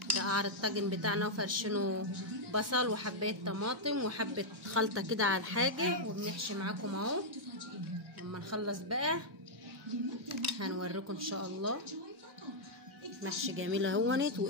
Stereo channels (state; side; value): normal; both; correlation -0.05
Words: ده قعر الطاجن بتاعنا وفرشينه بصل وحبايه طماطم وحبه خلطه كده على الحاجه، وبنحشي معاكم اهو. لما نخلص بقى هنوريكم ان شاء الله. محشي جميل اهونت